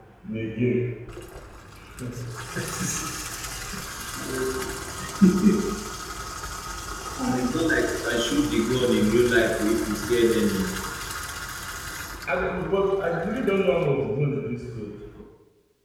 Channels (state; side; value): identical; both; correlation 1.00